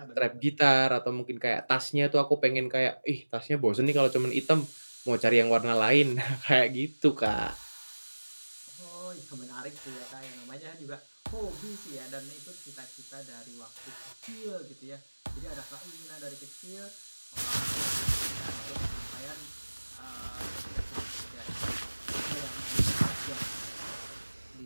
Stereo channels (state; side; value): inverted; both; correlation -1.00